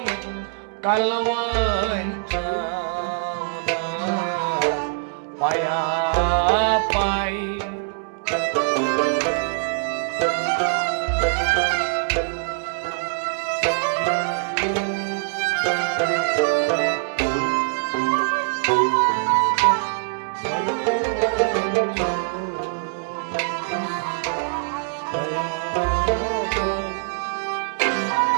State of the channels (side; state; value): left; silent; 63 dB below the other